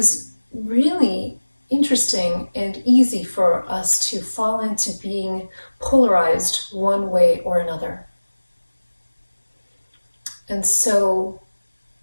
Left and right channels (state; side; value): inverted; both; correlation -1.00